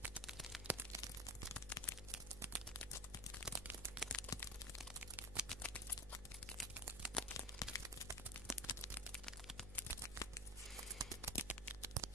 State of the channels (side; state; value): right; noise; hum, 12 dB below the sound